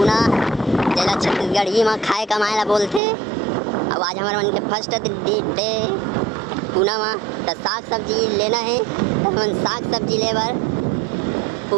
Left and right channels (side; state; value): left; drops out; at 3.0 s